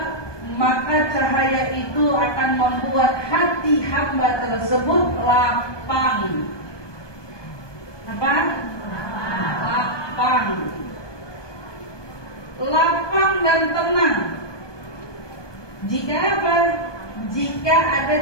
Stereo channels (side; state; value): right; late; 1.2 ms